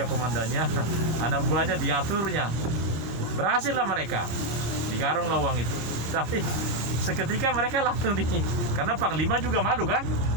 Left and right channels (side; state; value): left; late; 26 ms